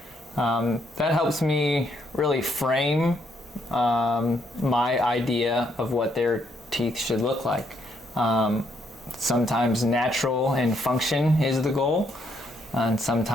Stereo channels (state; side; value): normal; both; correlation 0.73